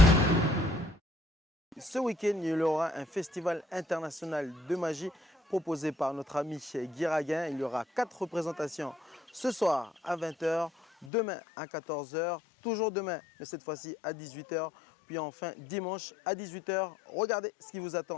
Ce week-end, il y aura un festival international de magie proposé par notre ami Guy Raguin. Il y aura 4 représentations ce soir à 20 h, demain à 14 h, toujours demain, mais cette fois-ci à 18 h, puis enfin dimanche à 18 h. Regardez ce qui vous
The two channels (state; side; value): drops out; right; at 11.1 s